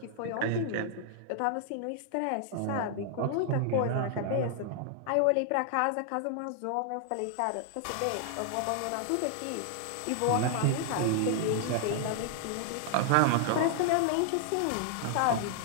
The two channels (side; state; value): both; different; correlation 0.00